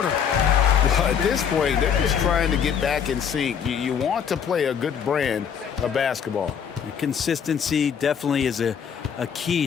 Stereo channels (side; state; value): right; quieter; 7.7 dB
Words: Well, at this point, they're just trying to get back in sync. You want to play a good brand of basketball. Consistency definitely is a